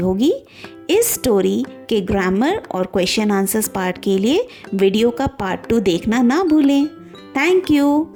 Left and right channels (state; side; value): identical; both; correlation 1.00